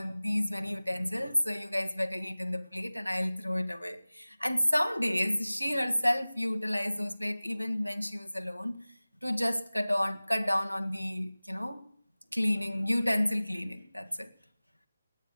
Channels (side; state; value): both; inverted; correlation -0.99